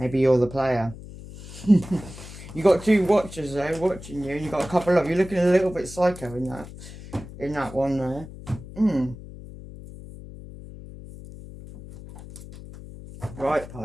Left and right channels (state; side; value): noise; left; hum, 15 dB below the sound